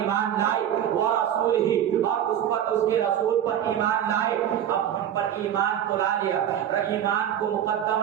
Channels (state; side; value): quieter; left; 10.2 dB